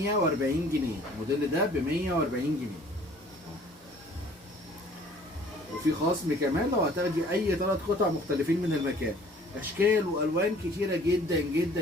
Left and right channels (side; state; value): both; normal; correlation 0.53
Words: جنيه. الموديل ده ب 140 جنيه. وفي خصم كمان لو هتاخدي اي 3 قطع مختلفين من المكان. اشكال والوان كتيره جدا